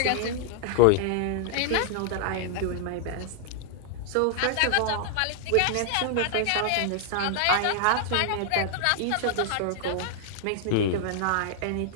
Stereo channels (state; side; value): different; both; correlation 0.00